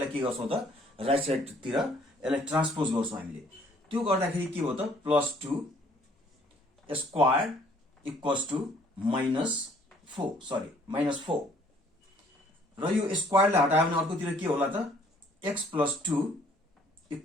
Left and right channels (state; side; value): normal; both; correlation 0.60